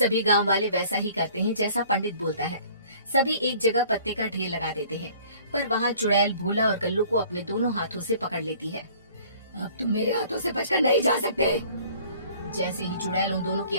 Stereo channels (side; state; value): both; inverted; correlation -0.53